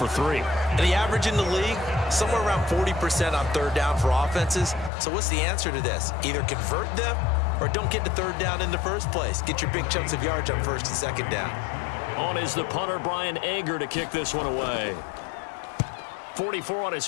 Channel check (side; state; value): right; drops out; at 4.9 s